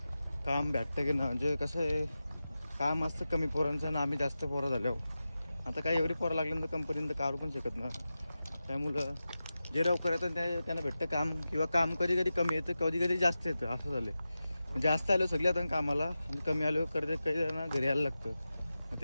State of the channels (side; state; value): both; inverted; correlation -0.93